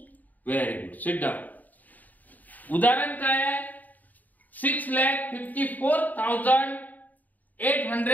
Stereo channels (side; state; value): right; late; 0.081 ms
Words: Very good. Sit down. उदाहरण काय आहे?